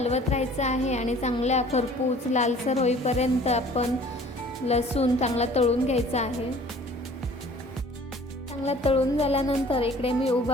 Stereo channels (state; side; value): normal; both; correlation 0.50